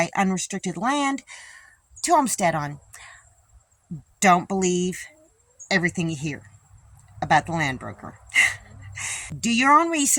unrestricted land to homestead on. Don't believe everything you hear about the land broker. Do your own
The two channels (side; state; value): both; identical; correlation 1.00